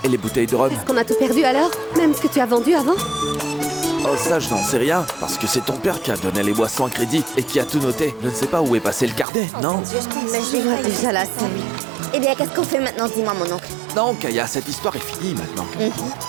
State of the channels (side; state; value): left; drops out; at 9.2 s